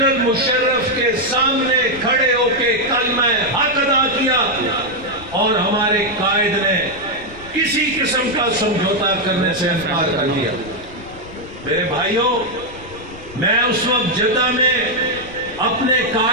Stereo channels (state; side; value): noise; left; rumble, 18 dB below the sound